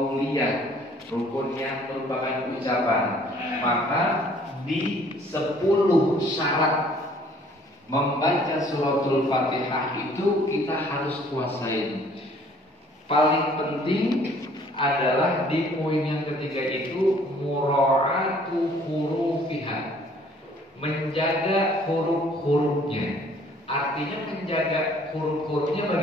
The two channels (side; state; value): both; normal; correlation 0.57